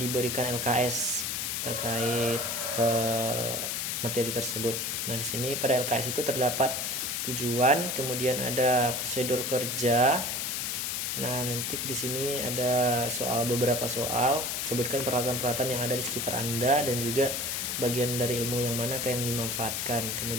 LKS terkait materi tersebut. Nah, di sini pada LKS itu terdapat tujuan, kemudian ada prosedur kerja. Nah, nanti di sini ada beberapa soal, sebutkan peralatan-peralatan yang ada di sekitar Anda dan juga bagian dari ilmu yang mana yang dimanfaatkan.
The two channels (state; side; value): noise; left; hiss, 1 dB below the sound